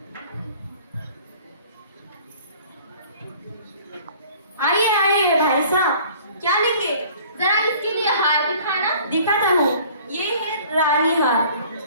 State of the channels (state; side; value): inverted; both; correlation -0.51